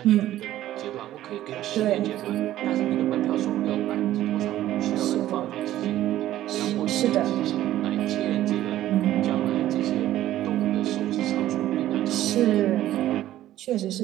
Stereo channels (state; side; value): quieter; left; 13.6 dB